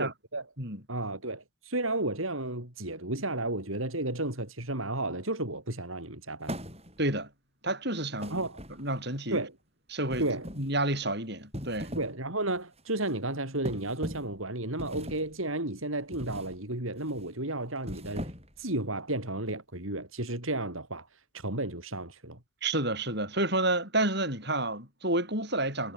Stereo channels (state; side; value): normal; both; correlation -0.09